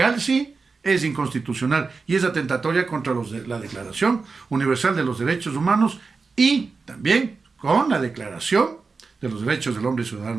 sí es inconstitucional y es atentatoria contra la Declaración Universal de los Derechos Humanos y también con la Declaración de los Derechos del Hombre y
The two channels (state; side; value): quieter; left; 4.5 dB